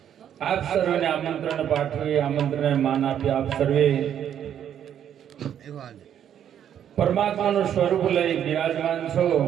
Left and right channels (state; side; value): quieter; left; 9.6 dB